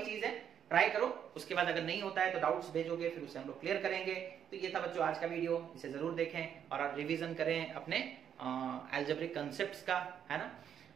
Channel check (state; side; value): quieter; left; 8.8 dB